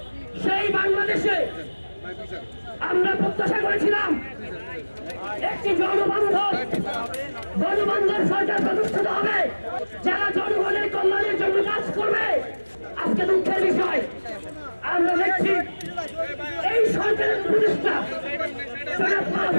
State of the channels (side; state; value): both; inverted; correlation -1.00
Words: সেই বাংলাদেশে আমরা প্রত্যাশা করেছিলাম একটি জনবান্ধব সরকার প্রতিষ্ঠিত হবে, যারা জনগণের কল্যাণের জন্য কাজ করবে। আজকে দুঃখের বিষয়, আমরা দেখছি এই সরকারের প্রতিষ্ঠা